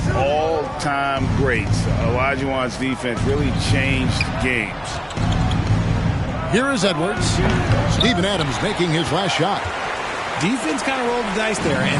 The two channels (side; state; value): both; identical; correlation 1.00